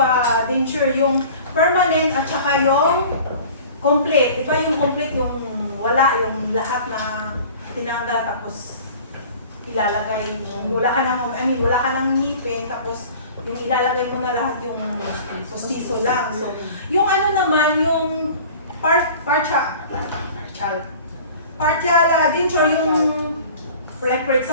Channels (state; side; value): inverted; both; correlation -0.44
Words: denture, yung permanent at saka yung complete. Di ba yung complete, yung wala, yung lahat na tinanggal tapos ilalagay, wala ka ng ngipin, tapos yung ilalagay mo na lahat yung pustiso lang. So, yung ano naman, yung partial denture, yung like for